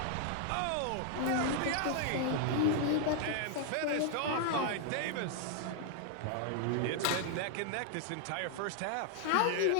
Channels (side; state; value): both; different; correlation 0.00